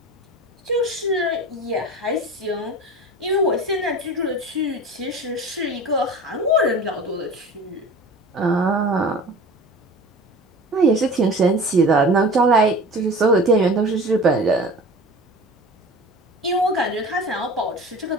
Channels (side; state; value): both; normal; correlation 0.38